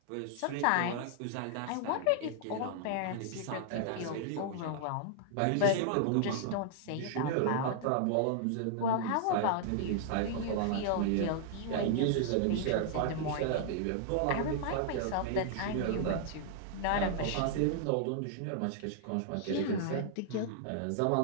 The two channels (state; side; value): different; both; correlation -0.01